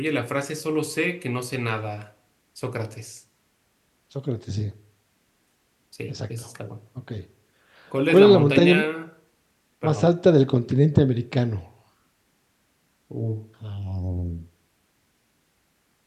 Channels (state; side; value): identical; both; correlation 1.00